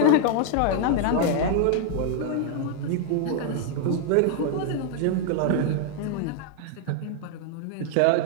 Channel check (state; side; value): different; both; correlation 0.00